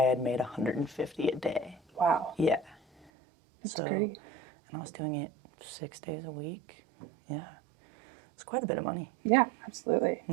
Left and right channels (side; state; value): left; drops out; at 3.1 s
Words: had made 150 a day. Wow. Yeah. That's great. And I was doing it 6 days a week. Yeah. It's quite a bit of money. Yeah, absolutely.